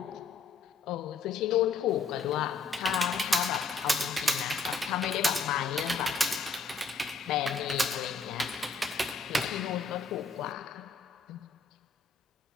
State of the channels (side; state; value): right; quieter; 4.4 dB